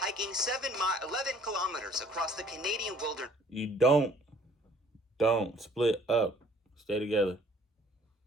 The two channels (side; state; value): both; normal; correlation 0.58